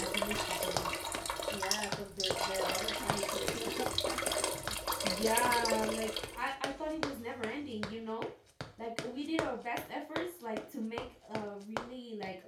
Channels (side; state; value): both; identical; correlation 1.00